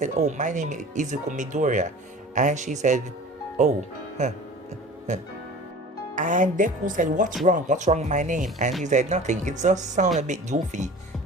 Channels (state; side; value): normal; both; correlation 0.41